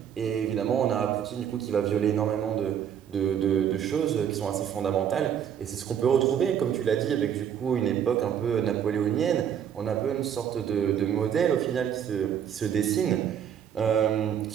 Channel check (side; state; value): left; quieter; 8.8 dB